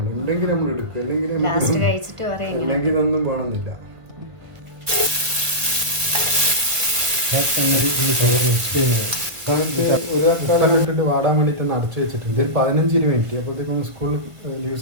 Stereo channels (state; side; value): late; left; 1.5 ms